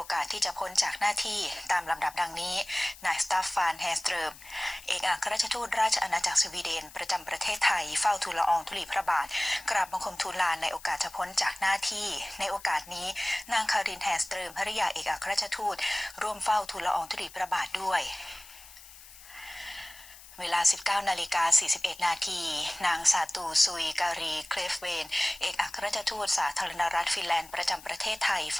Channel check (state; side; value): noise; left; hiss, 19 dB below the sound